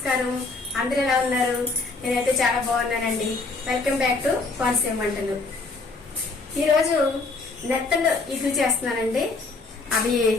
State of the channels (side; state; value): right; quieter; 3.8 dB